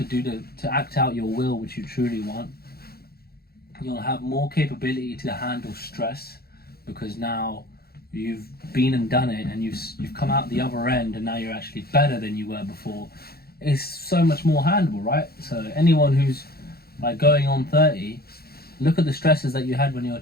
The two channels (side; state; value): right; late; 0.45 ms